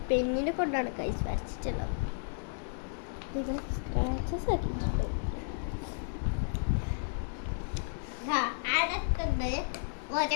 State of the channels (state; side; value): silent; right; digital silence